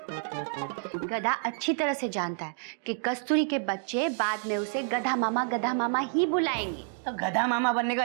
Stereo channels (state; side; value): silent; left; 59 dB below the other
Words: गधा अच्छी तरह से जानता है कि कस्तूरी के बच्चे बाद में उसे गधा मामा ही बुलाएंगे। तो गधा मामा बनने का